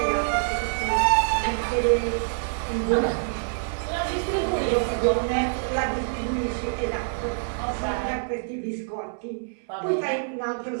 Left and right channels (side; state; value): left; silent; 59 dB below the other